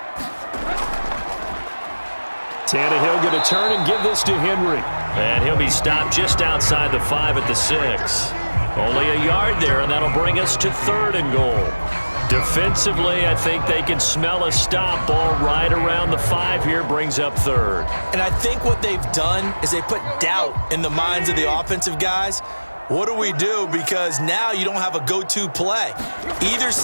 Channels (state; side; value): inverted; both; correlation -1.00